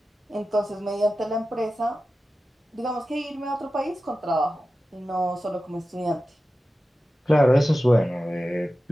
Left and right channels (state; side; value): normal; both; correlation 0.94